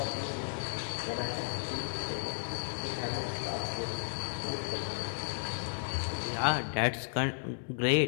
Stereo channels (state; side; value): silent; right; 55 dB below the other